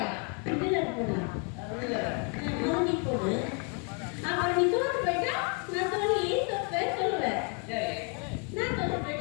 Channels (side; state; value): right; quieter; 37.8 dB